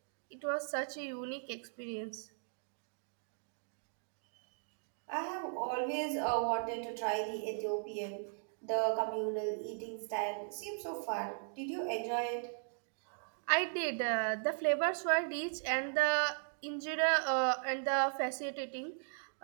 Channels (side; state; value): left; silent; digital silence